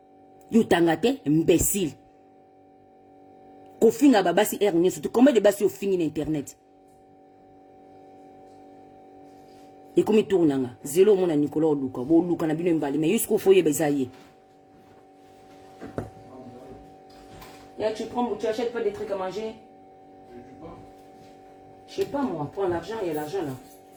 yo tanga te imbécile ko finga babasi ernie surtout combien de basi yo fingi na internet Et comme il tourne, zéro mon Nicolas Luka, bon Luka na bino mbali, mais jusqu'au foyer besaye. Tu achètes pas des trucs à manger? Je sais pas moi, prends l'argent, il y a l'argent là.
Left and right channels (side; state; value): both; identical; correlation 1.00